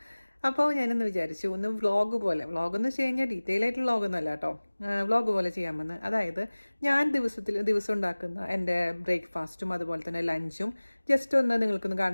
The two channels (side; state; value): both; inverted; correlation -1.00